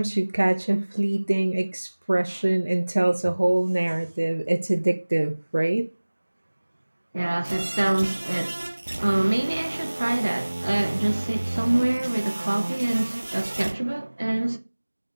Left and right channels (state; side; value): inverted; both; correlation -1.00